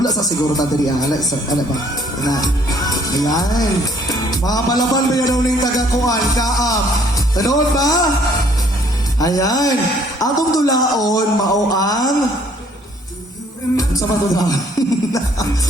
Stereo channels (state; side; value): normal; both; correlation 0.62